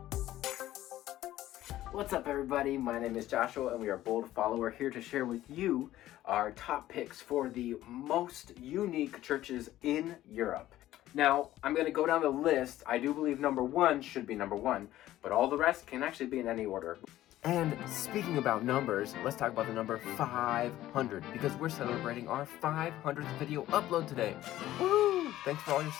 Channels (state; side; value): quieter; right; 14.3 dB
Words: What's up, everybody? My name is Joshua and we are Bold Follower, here to share with you our top picks for the most unique churches in Europe. Now, I'm going to go down the list. I do believe number one should be number one, but all the rest can actually be in any order. And speaking about numbers, let's talk about the number 500, because we're celebrating our 500th video upload today. Woo! Thanks for all your